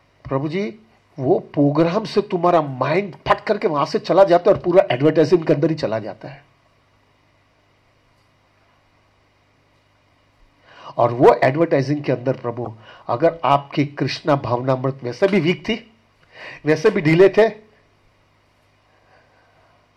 प्रभु जी, वो प्रोग्राम से तुम्हारा माइंड फट करके वहां से चला जाता है और पूरा एडवर्टाइजिंग के अंदर ही चला जाता है। और वो एडवर्टाइजिंग के अंदर प्रभु, अगर आपकी कृष्णा भावनामृत वैसे भी वीक थी, वैसे भी ढीले थे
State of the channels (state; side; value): identical; both; correlation 1.00